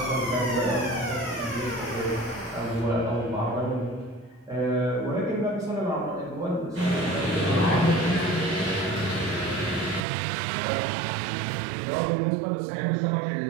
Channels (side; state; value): left; drops out; at 10.0 s